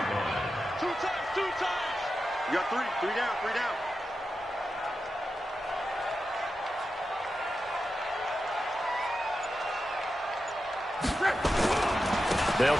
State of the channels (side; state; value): both; normal; correlation 0.90